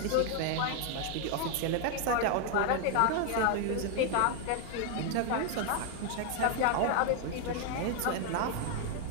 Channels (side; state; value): both; different; correlation 0.00